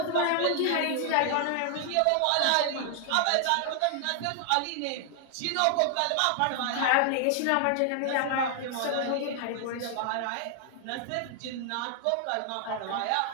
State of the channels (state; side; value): different; both; correlation 0.00